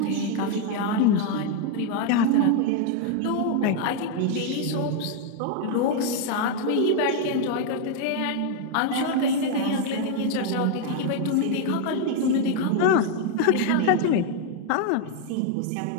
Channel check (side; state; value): both; different; correlation 0.00